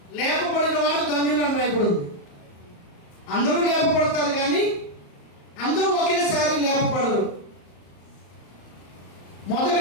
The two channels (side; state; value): right; late; 34 ms